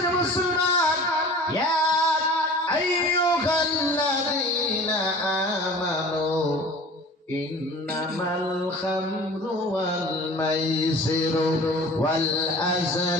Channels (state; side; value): normal; both; correlation 0.42